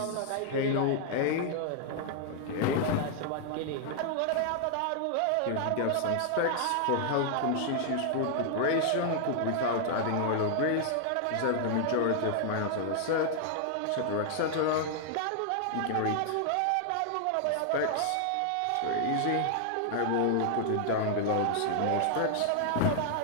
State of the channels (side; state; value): both; different; correlation 0.00